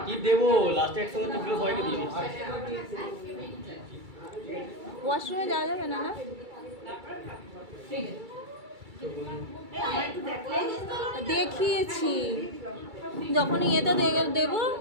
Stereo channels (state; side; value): late; left; 2.3 ms